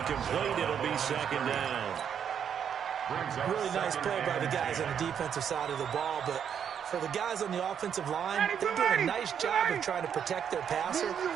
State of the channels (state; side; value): quieter; left; 8.2 dB